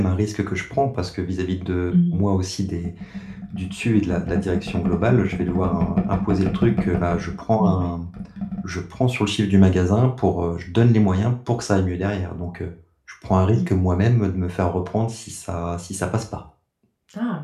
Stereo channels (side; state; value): both; identical; correlation 1.00